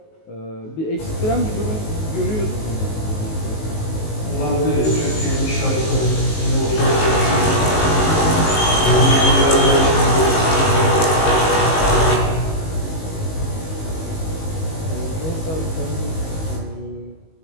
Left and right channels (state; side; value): late; right; 19 ms